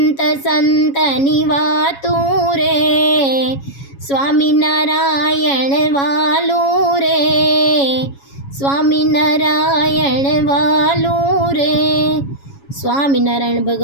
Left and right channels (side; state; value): right; late; 7.2 ms